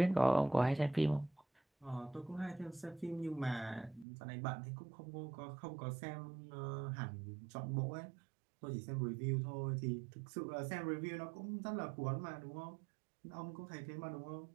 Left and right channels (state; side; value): drops out; left; at 4.0 s